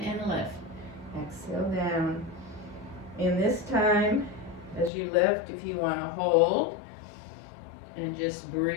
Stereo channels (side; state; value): right; drops out; at 4.9 s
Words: and lift. Exhale down. And this time, as you lift, if you want to hold, and just